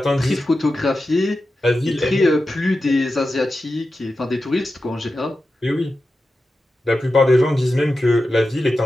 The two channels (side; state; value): both; normal; correlation 0.92